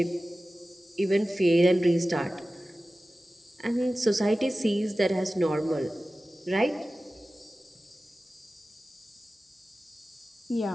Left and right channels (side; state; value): both; normal; correlation 0.96